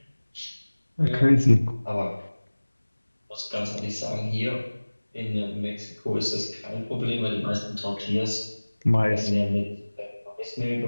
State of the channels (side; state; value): both; inverted; correlation -1.00